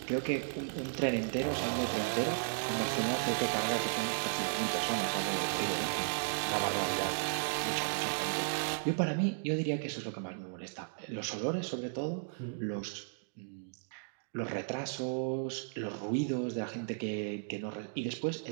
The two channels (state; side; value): silent; left; digital silence